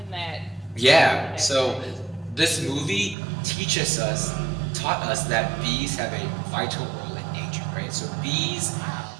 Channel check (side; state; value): left; drops out; at 3.2 s